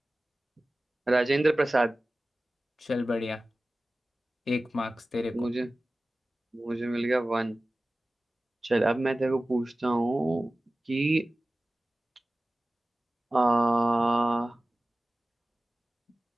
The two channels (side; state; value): both; normal; correlation 0.96